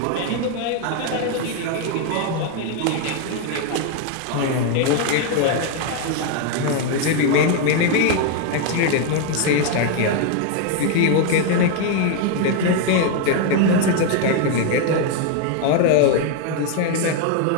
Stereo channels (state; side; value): different; both; correlation 0.01